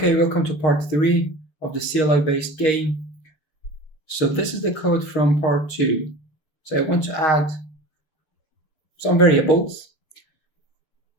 welcome to part 3 of the CLI-based game. So this is the code from part 2. So I want to add some variables.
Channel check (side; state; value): right; late; 6.4 ms